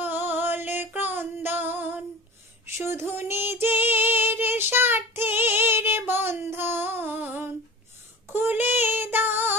ক্রন্দন, শুধু নিজের স্বার্থের বন্ধন। খুলে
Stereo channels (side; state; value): both; normal; correlation 0.35